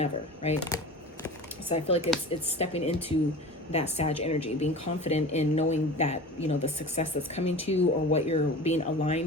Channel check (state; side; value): normal; both; correlation 0.36